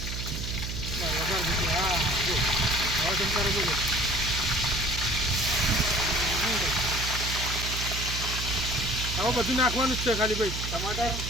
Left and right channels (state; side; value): noise; right; hum, 5 dB below the sound